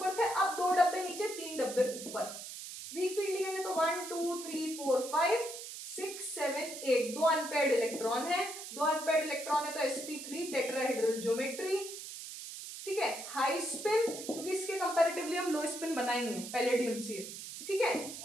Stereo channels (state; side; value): noise; right; hiss, 10 dB below the sound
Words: थे, अब 2 डब्बे नीचे 3 डब्बे ऊपर। वीक फील्ड लिगेंड है तो 1 2 3 4 5 6 7 8, 2 अनपेयर्ड इलेक्ट्रॉन है, 2 अनपेयर्ड इलेक्ट्रॉन है तो sp3 टेट्राहेड्रल ज्योमेट्री। ठीक है, हाई स्पिन क्योंकि इसके कंपैरेटिवली हम लो स्पिन बनाएंगे पैलेडियम से। ठीक है,